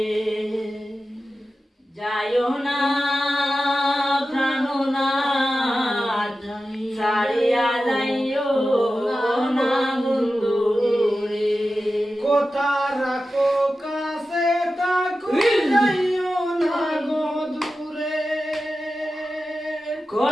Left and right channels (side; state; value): both; normal; correlation 0.93